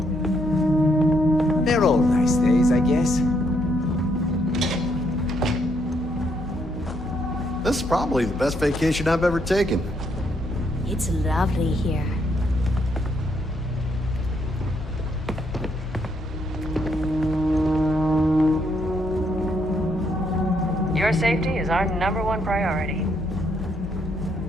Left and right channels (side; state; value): both; normal; correlation 0.74